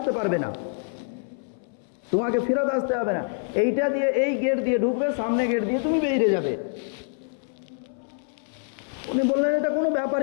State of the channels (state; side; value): silent; right; 61 dB below the other